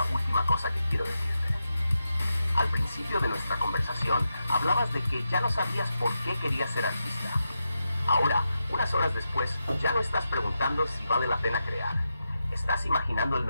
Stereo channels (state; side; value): inverted; both; correlation -0.87